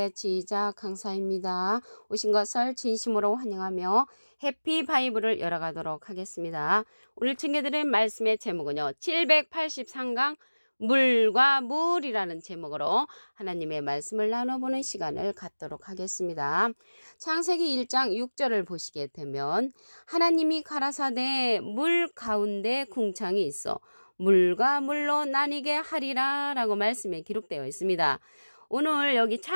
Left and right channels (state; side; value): inverted; both; correlation -1.00